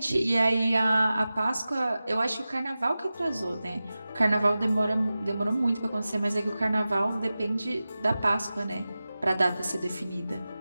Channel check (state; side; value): inverted; both; correlation -0.95